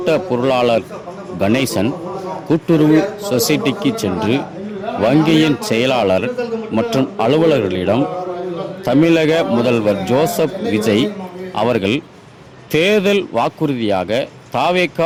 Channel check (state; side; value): identical; both; correlation 1.00